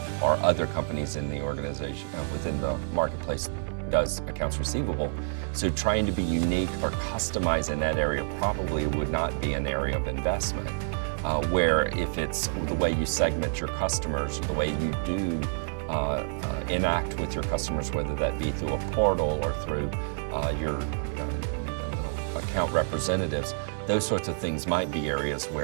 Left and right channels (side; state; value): left; silent; 58 dB below the other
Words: or other companies in the organization, within the marketplace, does accounts receivable. So trying to be unique or customize in that area probably would not be an area of investment. Where if it's the way you segment your customers, or the way you do enact with your customers, whether that be through a portal or through your account representatives, those sorts of things might be areas